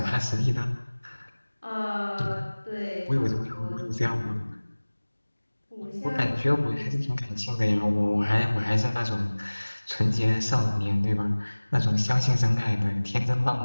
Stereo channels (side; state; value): both; inverted; correlation -1.00